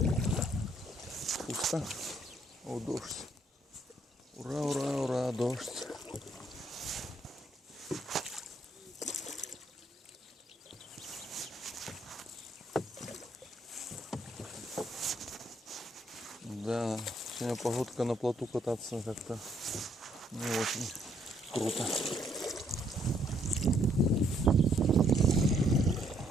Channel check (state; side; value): normal; both; correlation 0.70